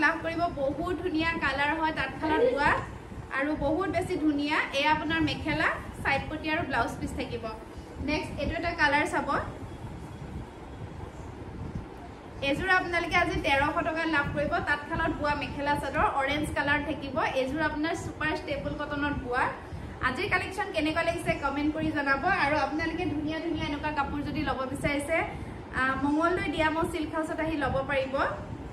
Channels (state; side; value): identical; both; correlation 1.00